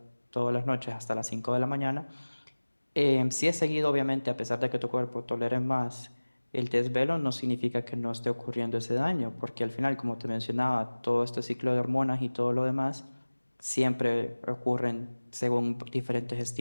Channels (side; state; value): both; inverted; correlation -1.00